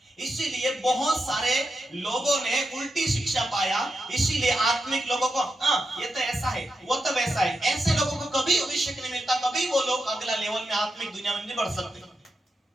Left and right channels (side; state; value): both; normal; correlation 0.87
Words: इसीलिए बहुत सारे लोगों ने उल्टी शिक्षा पाया। इसीलिए आत्मिक लोगों को ये तो ऐसा है, वो तो वैसा है, ऐसे लोगों को कभी अभिषेक नहीं मिलता, कभी वो लोग अगला लेवल में आत्मिक दुनिया में नहीं बढ़ सकते।